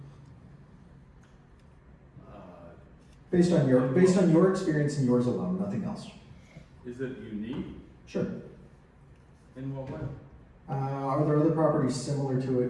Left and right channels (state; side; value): identical; both; correlation 1.00